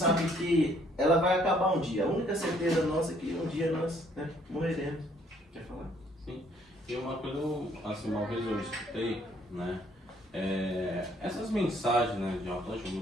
que ela vai acabar um dia. A única certeza nossa é que um dia nós, né, morreremos. Quer falar? Sim. E uma coisa, assim, uma vez eu escutei, né? Essas mensagens, né, de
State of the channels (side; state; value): both; normal; correlation 0.64